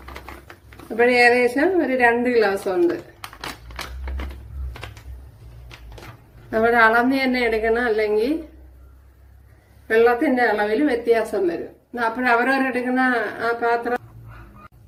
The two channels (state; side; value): identical; both; correlation 1.00